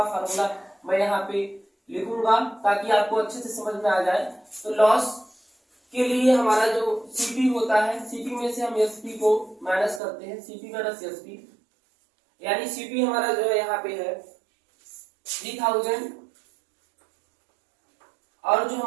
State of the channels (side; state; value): left; drops out; at 10.0 s